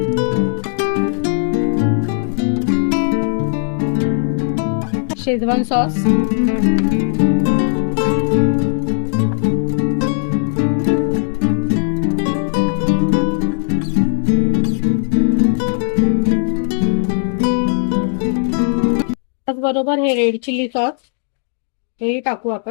शेजवान सॉस, त्याचबरोबर हे रेड चिली सॉस हे टाकू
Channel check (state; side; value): silent; right; digital silence